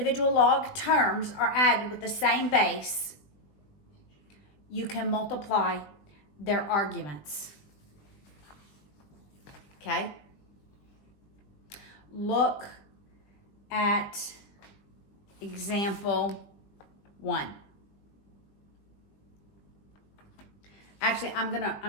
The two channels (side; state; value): right; late; 20 ms